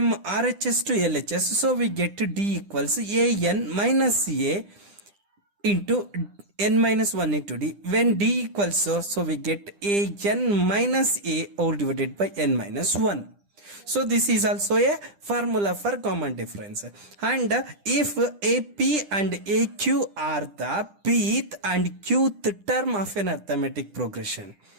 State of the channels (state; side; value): late; left; 9.9 ms